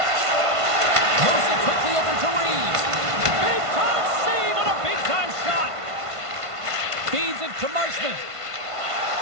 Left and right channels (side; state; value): left; late; 1.5 ms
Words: Moves it quickly over to Reeves. Big time save on a big time shot. Feeds it to Marchment.